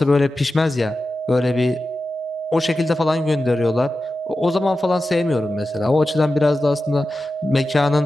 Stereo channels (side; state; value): both; normal; correlation 0.93